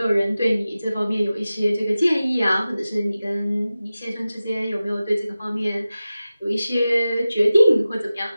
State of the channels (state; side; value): inverted; both; correlation -0.95